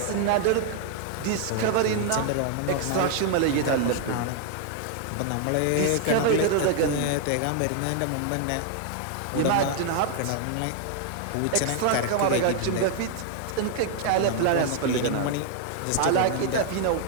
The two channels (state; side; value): different; both; correlation 0.00